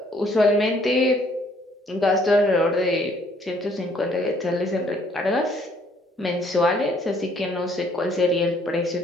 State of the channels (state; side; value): normal; both; correlation 0.64